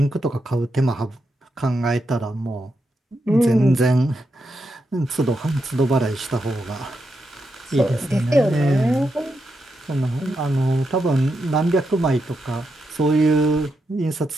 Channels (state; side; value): normal; both; correlation 0.84